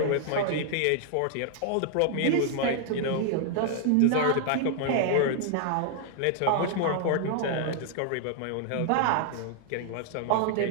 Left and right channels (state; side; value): different; both; correlation 0.00